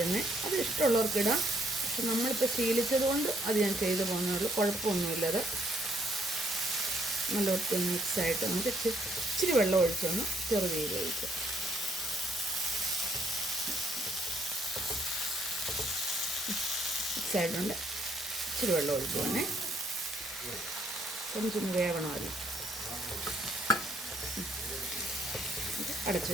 അത് ഇഷ്ടമുള്ളവർക്ക് ഇടാം. പക്ഷെ നമ്മളിപ്പോൾ ശീലിച്ചത് കൊണ്ട് അത് ഞാൻ ചെയ്തു പോകുന്നുള്ളൂ. കുഴപ്പമൊന്നുമില്ലത്. നല്ല ഒത്തിരി മിക്സായിട്ട് നമുക്ക് ഇച്ചിരി വെള്ളം ഒഴിച്ചൊന്ന് ചെറുതീയിൽ ഒഴിക്കുക. മിക്സായിട്ടുണ്ട്. ഇച്ചിരി വെള്ളം ഒഴിക്കുവാണേ, കൊഞ്ചൊന്ന് വേവണമല്ലോ. അടച്ചു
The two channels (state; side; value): normal; both; correlation 0.69